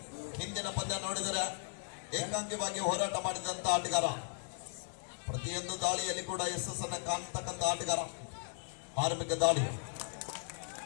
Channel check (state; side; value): silent; right; 53 dB below the other